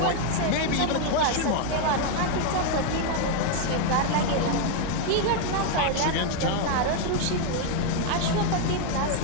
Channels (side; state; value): both; different; correlation 0.01